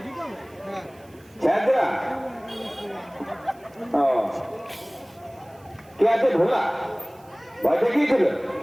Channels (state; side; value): noise; right; hiss, 30 dB below the sound